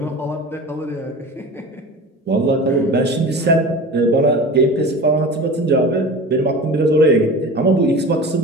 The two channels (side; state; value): both; normal; correlation 0.35